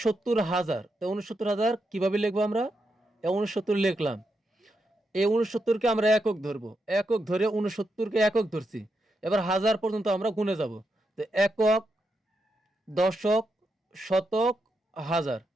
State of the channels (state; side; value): normal; both; correlation 0.84